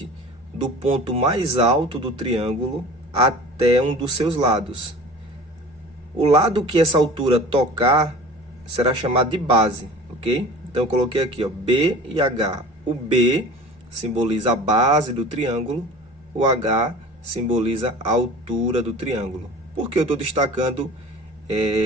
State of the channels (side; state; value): both; normal; correlation 0.40